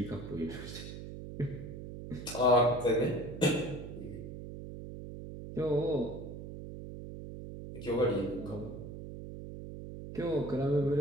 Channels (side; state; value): right; noise; hum, 10 dB below the sound